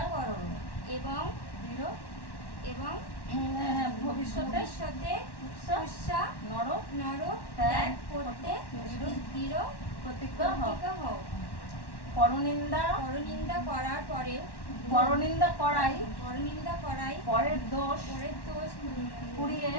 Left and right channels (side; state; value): right; late; 1.1 ms